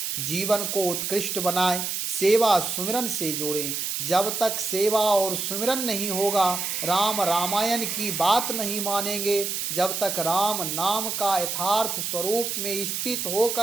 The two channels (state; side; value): noise; right; hiss, 2 dB below the sound